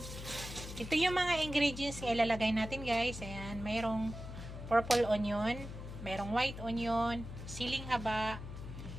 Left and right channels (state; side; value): noise; left; hum, 10 dB below the sound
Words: Ito yung mga ingredients na ilalagay natin guys. Ayan, mayroong purple onion, mayroong white onion, siling haba,